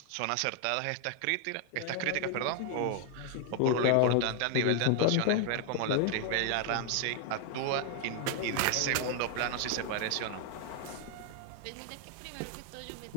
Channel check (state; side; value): different; both; correlation 0.00